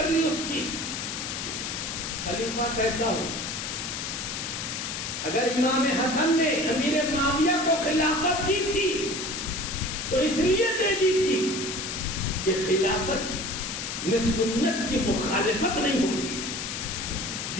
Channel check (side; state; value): left; noise; hiss, 4 dB below the sound